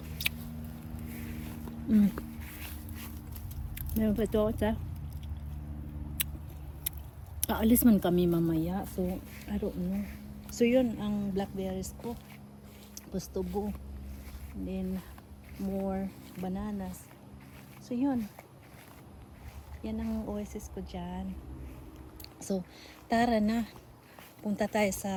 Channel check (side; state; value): both; identical; correlation 1.00